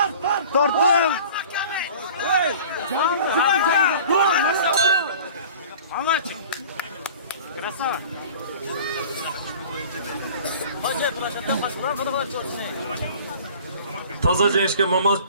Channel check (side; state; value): both; inverted; correlation -0.44